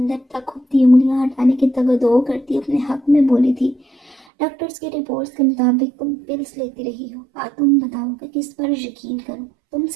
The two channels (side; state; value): left; drops out; at 4.2 s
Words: تک کھپتی انگلیاں ہٹانے کی تگدو کرتی اپنے حق میں بولی تھی۔ ڈاکٹرز کی رپورٹس کے مطابق تم پلز لیتی رہی ہو۔ تم بتاؤ کہ کس پر یقین کروں؟ تم